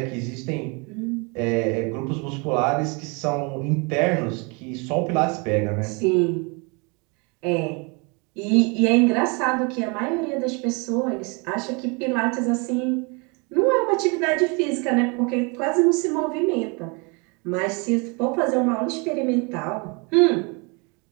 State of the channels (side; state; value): left; quieter; 31.1 dB